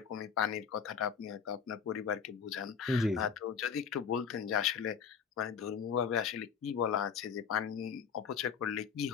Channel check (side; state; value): right; quieter; 6.9 dB